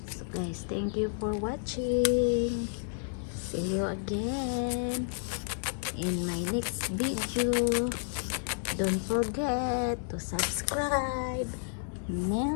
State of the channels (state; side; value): silent; right; 57 dB below the other